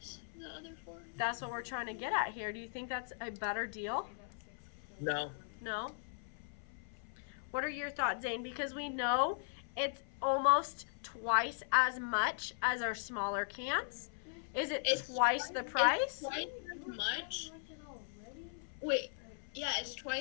other 4? that's what we're trying to get at here. Do you think that's a better deal? No. No? What are your thoughts, Zane? Because we know it's almost twice as much as our smaller cans. Is it twice the price? It's twice as much. Wait, yeah, it's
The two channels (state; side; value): silent; right; 52 dB below the other